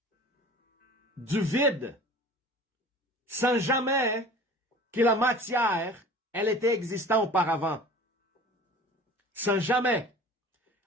du vide, sans jamais que la matière, elle était existante auparavant. Sans jamais.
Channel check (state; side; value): normal; both; correlation 0.43